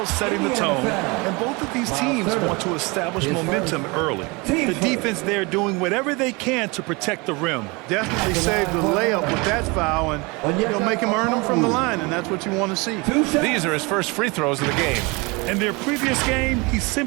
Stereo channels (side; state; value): left; quieter; 27.0 dB